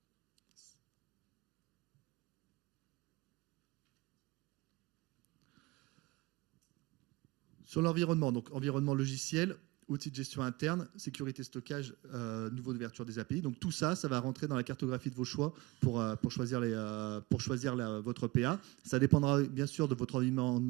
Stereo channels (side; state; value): left; quieter; 22.1 dB